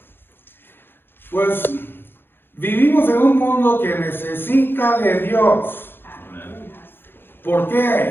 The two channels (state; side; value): late; right; 0.10 ms